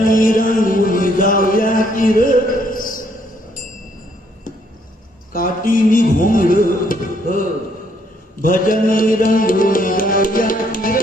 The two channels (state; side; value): normal; both; correlation 0.69